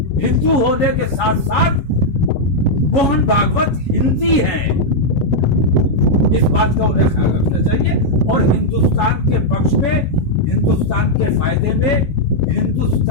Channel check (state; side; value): late; right; 7.2 ms